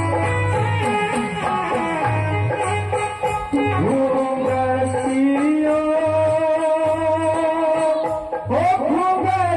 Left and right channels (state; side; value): identical; both; correlation 1.00